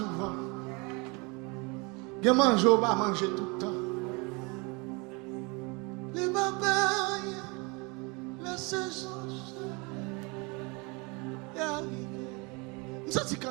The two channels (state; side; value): quieter; left; 29.2 dB